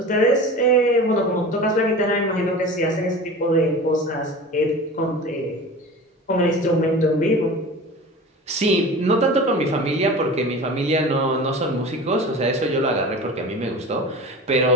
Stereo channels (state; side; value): normal; both; correlation 0.35